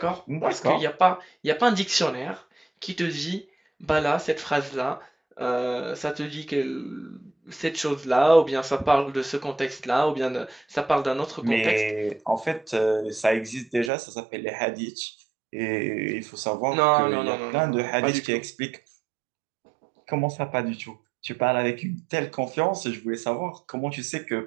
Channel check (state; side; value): drops out; left; at 13.9 s